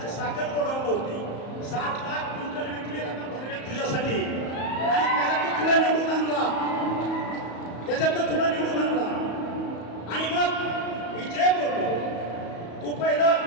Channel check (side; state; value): right; late; 34 ms